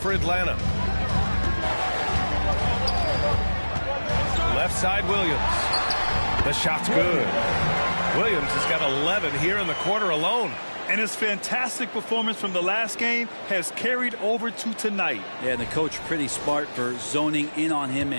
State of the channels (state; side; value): inverted; both; correlation -1.00